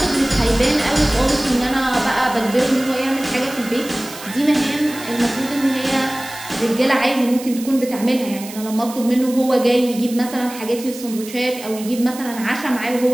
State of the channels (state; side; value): noise; right; hiss, 14 dB below the sound